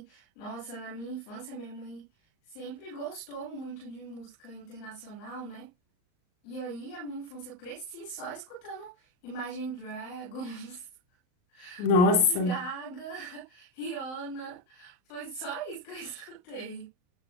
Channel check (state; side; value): late; right; 39 ms